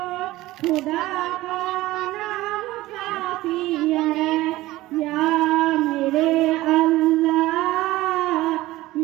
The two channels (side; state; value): left; quieter; 17.5 dB